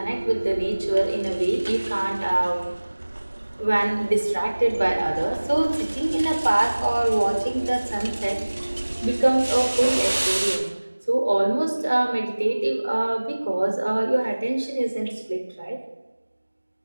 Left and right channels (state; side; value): inverted; both; correlation -1.00